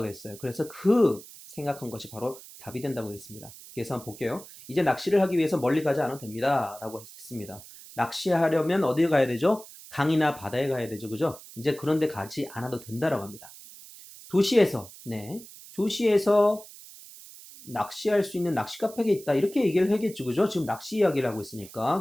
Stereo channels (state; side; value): noise; right; hiss, 18 dB below the sound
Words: 했어요. 그래서 그 생각한 것이 바로 답이 된다고 했습니다. 그래서 한번 볼게요. 이제 낚시를 하기 위해서 멀리 가지 않아도 됩니다. 라고 했습니다. 낚시하려면 어디 가야 되죠? 강이나 바다에 가야 되죠. 그죠? 이제 그런 데 가지 않아도 된다라고 합니다. 도시에서, 네. 도시에서 낚시할 수 있는 낚시 카페가 있다. 이렇게 얘기를 하겠죠. 그죠? 지금 낚시 이야기를 하고